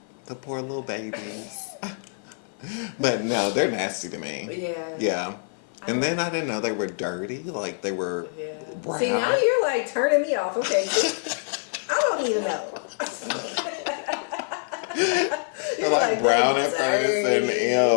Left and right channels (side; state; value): right; silent; 56 dB below the other